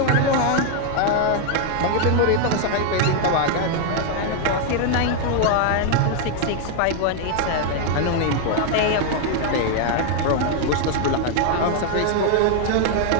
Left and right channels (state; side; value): different; both; correlation 0.00